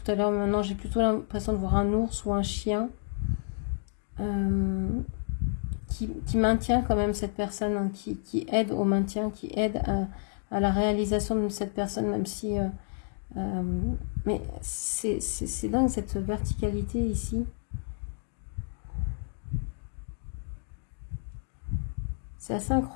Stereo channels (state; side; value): silent; right; digital silence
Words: à l'heure, mais maintenant j'ai plutôt l'impression de voir un ours ou un chien qui maintient quand même cette personne, hein, qui aide au maintien, qui aide à la réalisation de cette personne, même si... mais c'est dingue cette verticalité ici. C'est assez